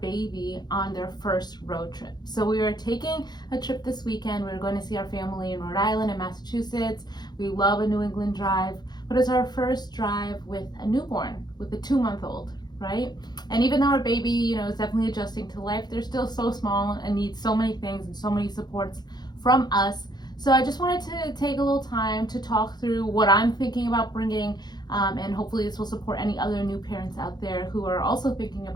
baby on their first road trip. So we are taking a trip this weekend. We're going to see our family in Rhode Island and Massachusetts. We love a New England drive, but it's our first drive with a newborn, with a 2-month-old, right? And even though our baby, is definitely adjusting to life, they're still so small and need so many things and so many supports from us. So I just wanted to take a little time to talk through what I'm thinking about bringing, and hopefully this will support any other new parents out there who are also thinking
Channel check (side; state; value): right; late; 0.20 ms